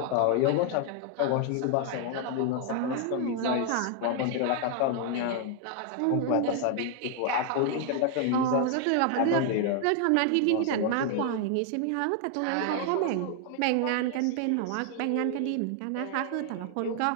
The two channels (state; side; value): different; both; correlation 0.00